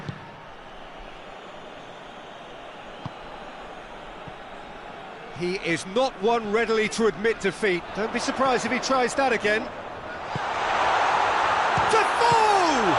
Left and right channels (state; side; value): identical; both; correlation 1.00